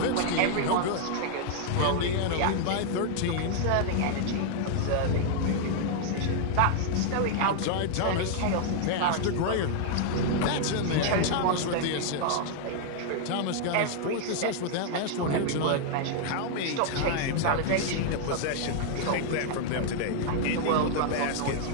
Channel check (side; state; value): both; different; correlation 0.00